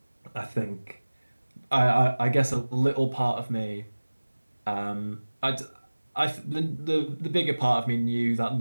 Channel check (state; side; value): inverted; both; correlation -1.00